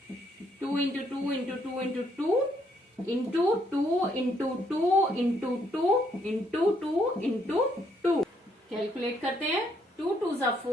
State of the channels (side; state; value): both; normal; correlation 0.71